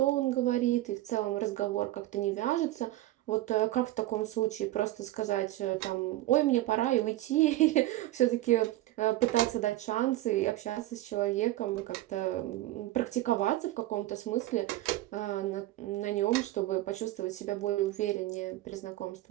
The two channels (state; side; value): quieter; left; 16.1 dB